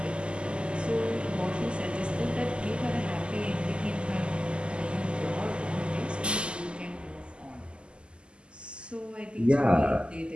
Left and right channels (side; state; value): left; late; 0.051 ms